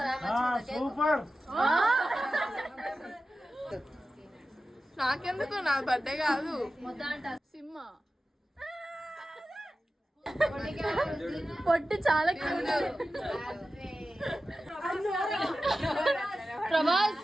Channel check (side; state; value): both; normal; correlation 0.94